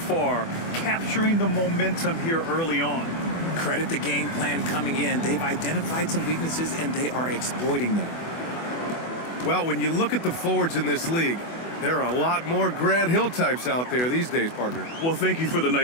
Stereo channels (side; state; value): right; late; 24 ms